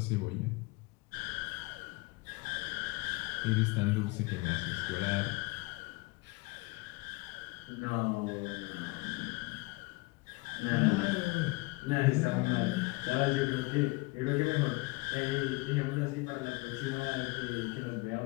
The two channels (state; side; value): quieter; right; 24.3 dB